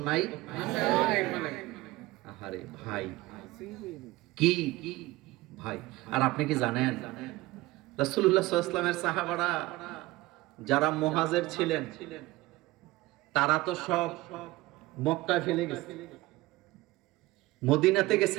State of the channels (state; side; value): quieter; left; 19.4 dB